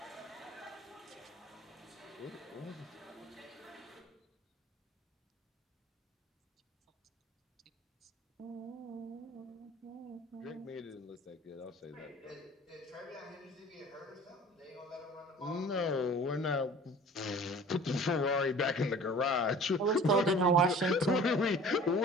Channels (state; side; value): normal; both; correlation 0.45